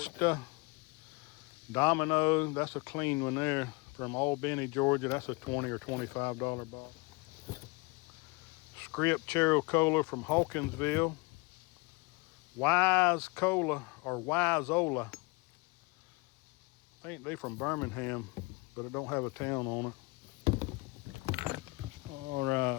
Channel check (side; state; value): right; quieter; 25.4 dB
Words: Domino, that's a clean one there from Albany, Georgia. That's a $20 or $25 bottle. Script Chero Cola from Hawkinsville. Wise Cola or Wiseola. I think they from Birmingham, but it don't have a town on it. All